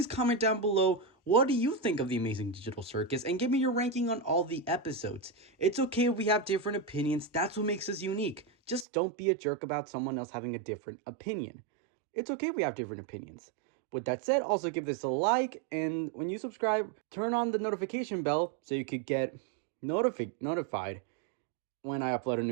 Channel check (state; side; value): drops out; left; at 8.8 s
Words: comment down below what do you think of The Amazing Digital Circus, and give me your ranking on all the episodes. It's okay if we have different opinions, that's what makes us unique. Just don't be a jerk about someone else having a different opinion. It's okay if we have different opinions. With that said, also give this a like, and when you subscribe, turn on the notification bell so you could get notified when I upload a